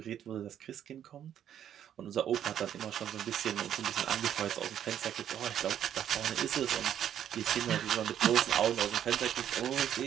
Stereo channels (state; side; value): quieter; left; 10.0 dB